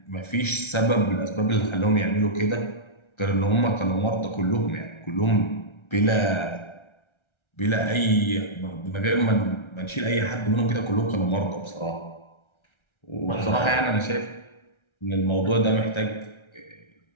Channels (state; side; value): late; right; 1.3 ms